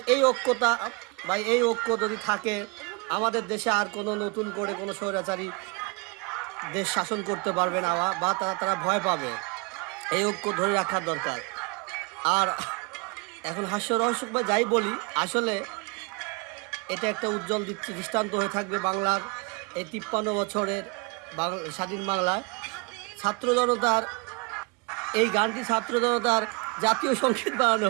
এই ঐক্যতা বা এই ঐক্য যদি থাকে, আমাদের দেশে আর কোনো নতুন করে কোনো স্বৈরাচারী দেশ শাসন করতে পারবে না বা তারা ভয় পাবে। এই ঐক্য ধরে রাখার দরকার। আর এখন হাস্যরহস্য বা যাই বলি, আসলে এটা একটা উজ্জ্বল দৃষ্টান্ত হয়ে থাকবে বাংলার এই ৫৩ বছরের স্বাধীন বাংলায়। ছাত্র জনতার এই গানটি ছাত্র জনতার জাতীয় সঙ্গীত বানানো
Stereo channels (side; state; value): left; quieter; 30.1 dB